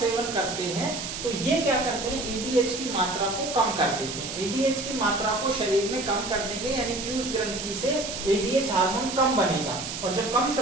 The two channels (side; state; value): right; noise; hiss, 6 dB below the sound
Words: करते हैं तो ये क्या करते हैं? ADH की मात्रा को कम कर देते हैं। ADH की मात्रा को शरीर में कम कर देंगे, यानी पीयूष ग्रंथि से ADH हार्मोन कम बनेगा, और जब कम